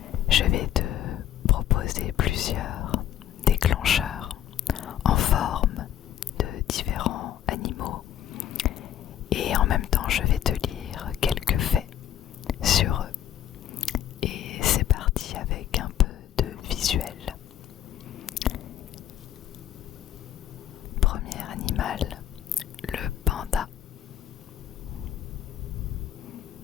Je vais te proposer plusieurs déclencheurs en forme de différents animaux et en même temps je vais te lire quelques faits sur eux. Et c'est parti avec un peu de visuel. Premier animal, le panda.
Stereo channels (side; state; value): right; quieter; 10.9 dB